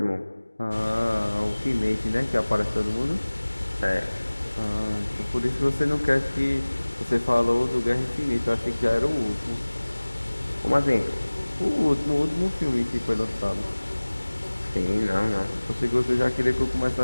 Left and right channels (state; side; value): inverted; both; correlation -1.00